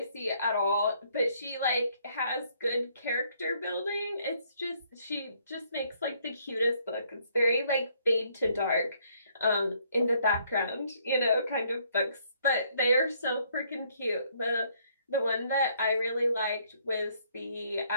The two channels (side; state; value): both; inverted; correlation -0.67